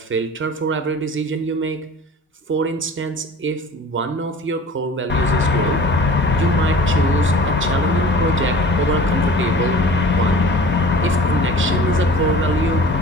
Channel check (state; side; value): normal; both; correlation 0.43